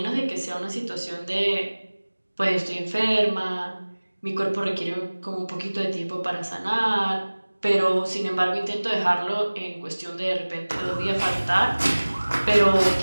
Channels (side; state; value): both; inverted; correlation -1.00